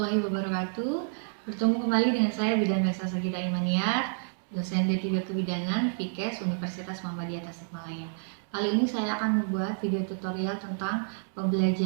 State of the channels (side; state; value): left; silent; digital silence